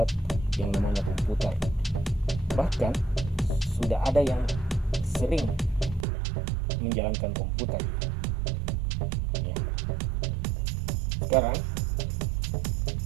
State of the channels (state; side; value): drops out; left; at 6.1 s